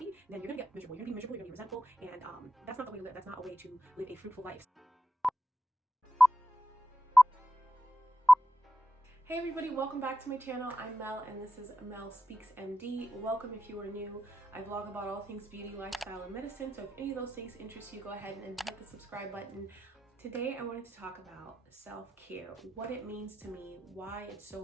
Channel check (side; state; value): both; normal; correlation 0.89